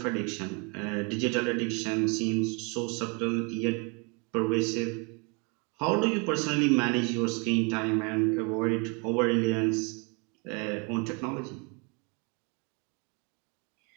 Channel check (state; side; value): quieter; left; 32.8 dB